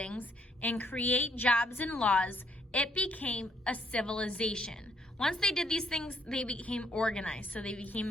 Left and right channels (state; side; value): normal; both; correlation 0.70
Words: and create jobs and laws, it became a civilization. Once they did these things, they became organized, so they